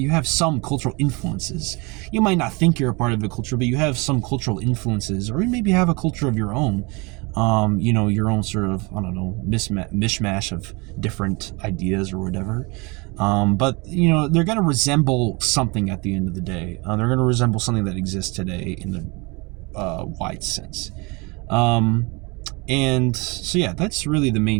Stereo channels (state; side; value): quieter; left; 27.8 dB